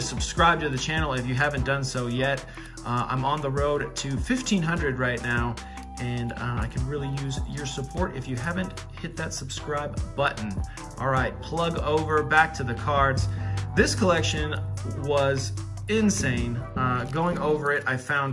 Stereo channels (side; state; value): both; identical; correlation 1.00